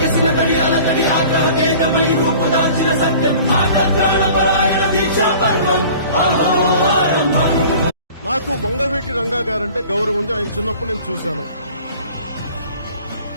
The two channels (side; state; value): both; inverted; correlation -0.46